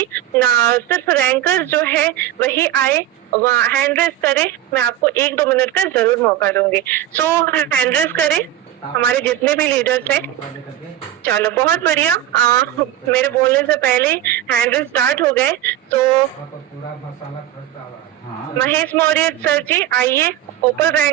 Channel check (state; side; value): quieter; left; 12.3 dB